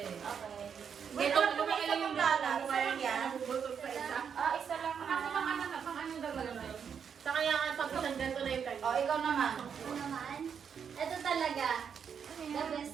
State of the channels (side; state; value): left; quieter; 7.2 dB